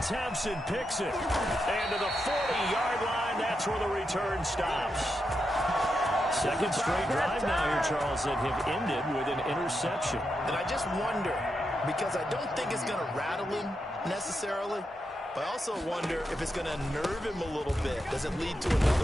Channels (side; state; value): both; normal; correlation 0.85